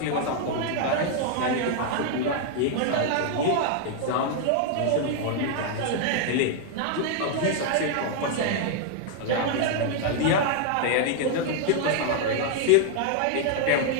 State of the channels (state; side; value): different; both; correlation 0.00